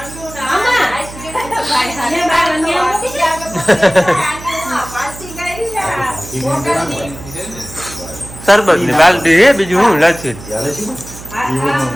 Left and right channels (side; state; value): right; noise; hum, 15 dB below the sound